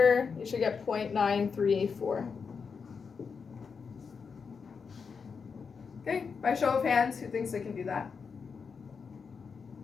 you should get 0.9384. Okay, by show of hands, who thinks they can do that?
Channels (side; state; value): right; quieter; 5.7 dB